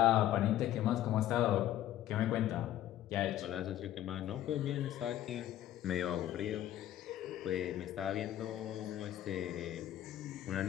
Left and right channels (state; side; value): quieter; right; 12.8 dB